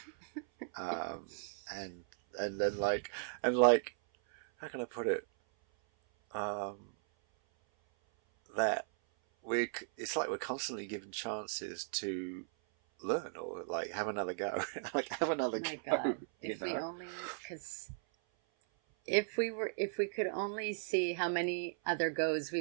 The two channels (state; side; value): silent; left; 53 dB below the other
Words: um, and then like how can I put it? Um, that it's like we're constantly given chances to learn or like have another go, like have another Oh my go, God. you If we know? only, because if we could only see how many other goes